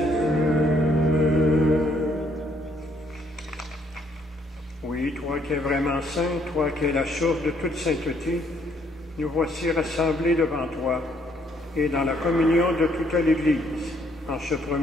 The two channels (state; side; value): normal; both; correlation 0.68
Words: Demeurant saint, toi qui es la source de toute sainteté, nous voici rassemblés devant toi et dans la communion de toute l'Église, en ce